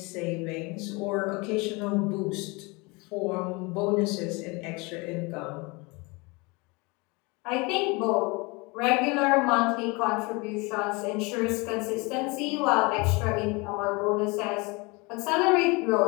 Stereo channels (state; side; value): quieter; right; 26.9 dB